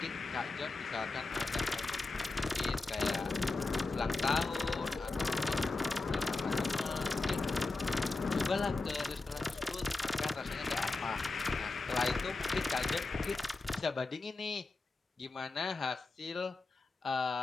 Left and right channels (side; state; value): right; quieter; 3.5 dB